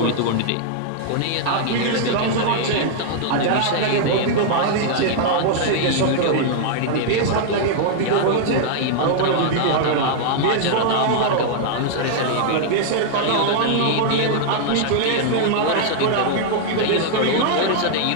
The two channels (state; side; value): different; both; correlation -0.01